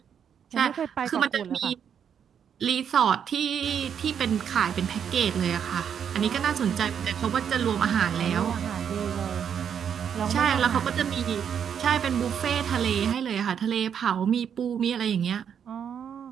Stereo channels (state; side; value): quieter; left; 8.0 dB